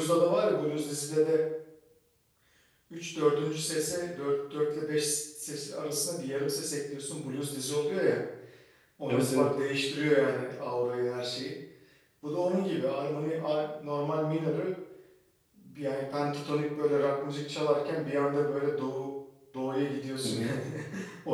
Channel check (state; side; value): identical; both; correlation 1.00